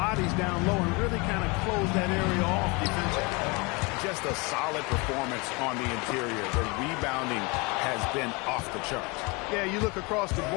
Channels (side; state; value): right; quieter; 27.8 dB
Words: down low and really kind of close that area off defensively. Just a solid performance on the interior. The rebounding has been off the charts. Yeah, you look across the